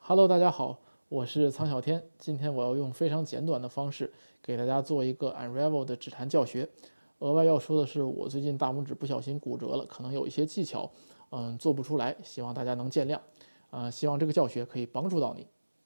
Hello，大家好，我是苍小天。今天我要用非常简短的方式给大家做一个 Unravel 的指弹教学。额外要说的是，我最近大拇指不小心骨折了，可能有一些技巧，做不出来，希望大家能见谅。希望这个教学可以帮助到你。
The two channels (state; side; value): inverted; both; correlation -1.00